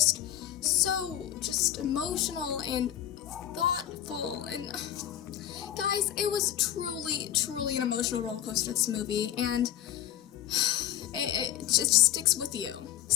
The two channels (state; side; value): quieter; right; 11.7 dB